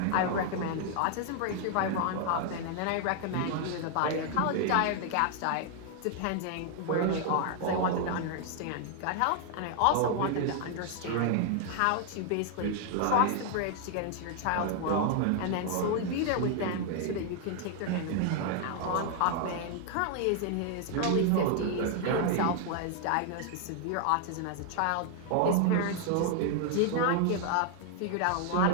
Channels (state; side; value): different; both; correlation 0.00